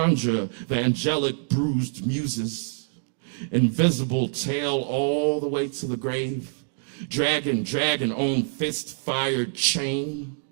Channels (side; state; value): left; silent; digital silence